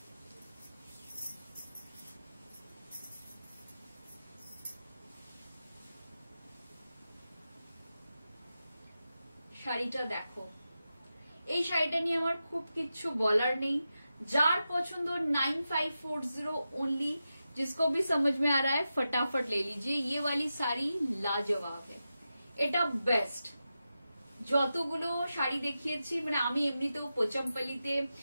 শাড়িটা দেখো, এই শাড়িটা নিয়ে আমার খুব কিচ্ছু বলার নেই। जार পছন্দ 9540 ओनली। जिसको भी समझ में आ रहा है फटाफट ले लीजिए। ये वाली साड़ी लाजवाब है, এটা বেস্ট। যতগুলো শাড়ি দেখিয়েছি মানে আমি এমনিতেও পোচামপাল্লিতে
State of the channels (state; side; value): inverted; both; correlation -0.91